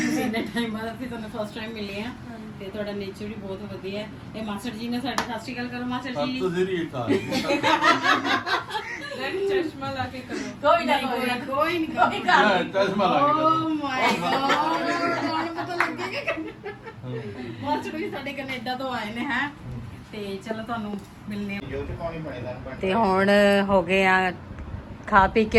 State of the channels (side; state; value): both; identical; correlation 1.00